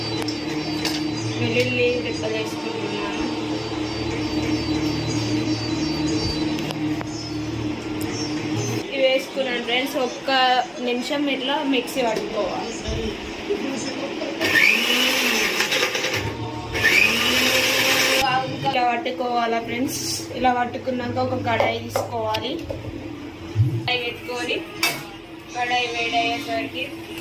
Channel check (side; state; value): both; identical; correlation 1.00